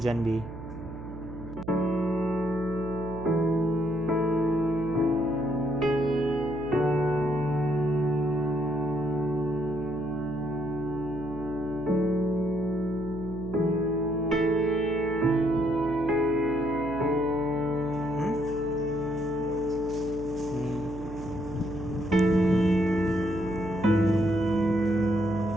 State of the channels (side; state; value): right; noise; hum, 11 dB below the sound